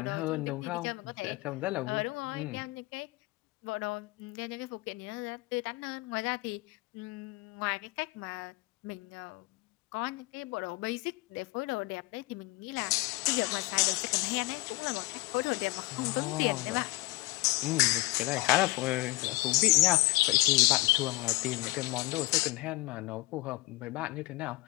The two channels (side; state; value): right; quieter; 22.1 dB